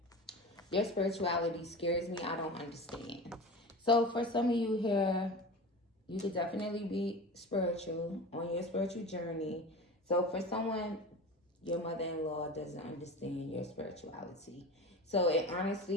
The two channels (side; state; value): both; normal; correlation 0.32